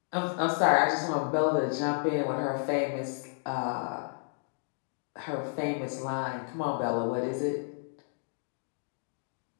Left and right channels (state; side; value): silent; right; 57 dB below the other